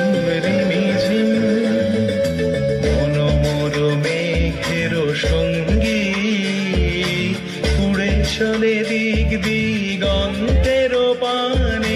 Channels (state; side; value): identical; both; correlation 1.00